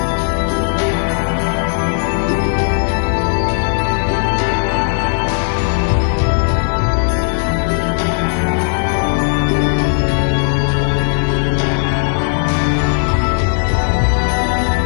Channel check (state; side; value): silent; right; digital silence